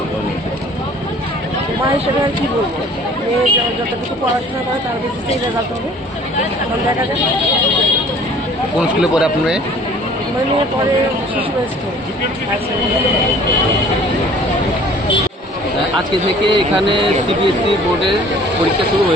মা হিসেবে আর কি বলবো, মেয়ে যতটুকু পড়াশোনা করে তার বেসিসেই রেজাল্ট হবে। এখন দেখা যাক। কোন স্কুলে পড়ে আপনার মেয়ে? আমার মেয়ে পরে শিশু স্কুল। আজকে থেকে এখানে সিবিএসসি বোর্ডের পরীক্ষা শুরু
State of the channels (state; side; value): normal; both; correlation 0.51